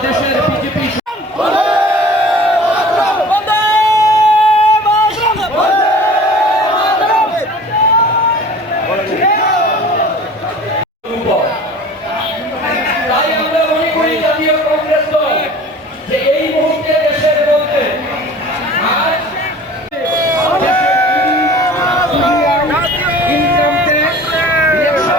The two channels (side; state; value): both; normal; correlation 0.44